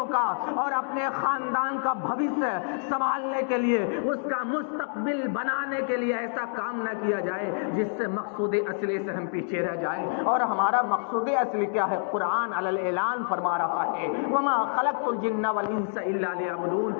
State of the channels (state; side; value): silent; right; 60 dB below the other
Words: کا اور اپنے خاندان کا بھوشیہ سنبھالنے کے لیے، اس کا مستقبل بنانے کے لیے ایسا کام نہ کیا جائے جس سے مقصود اصلی سے ہم پیچھے رہ جائیں۔ اور ہمارا مقصود اصلی کیا ہے؟ قرآن علی الاعلان فرما رہا ہے وَمَا خَلَقْتُ الْجِنَّ وَالْإِنسَ إِلَّا